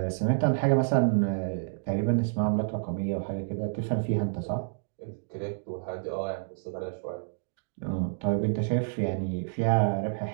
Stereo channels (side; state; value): left; silent; digital silence